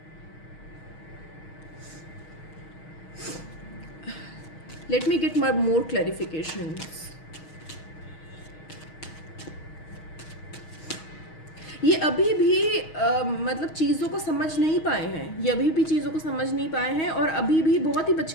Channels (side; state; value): right; late; 6.3 ms